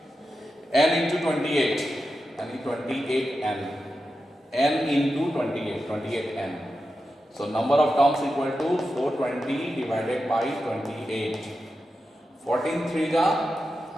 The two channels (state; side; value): normal; both; correlation 0.90